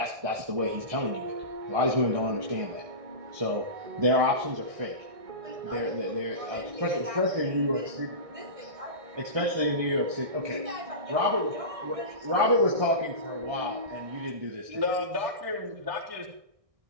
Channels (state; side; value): late; left; 1.6 ms